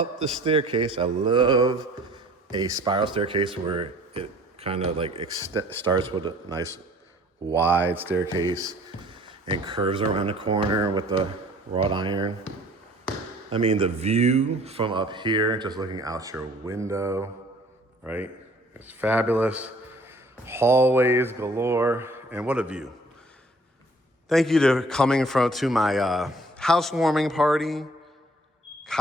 the staircase. I love a spiral staircase where it kind of like starts with a nice wide staircase and curves around the corner with the wrought iron. I mean, the view from up here, just looking out your window, right? It's fabulous. Hallways galore, and what a view. Thank you to coming to my housewarming party,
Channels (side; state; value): both; normal; correlation 0.55